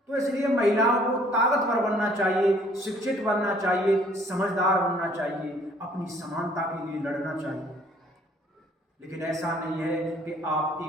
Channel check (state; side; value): normal; both; correlation 0.59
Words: तो इसलिए महिलाओं को ताकतवर बनना चाहिए, शिक्षित बनना चाहिए, समझदार बनना चाहिए, अपनी समानता के लिए लड़ना चाहिए। लेकिन ऐसा नहीं है कि आप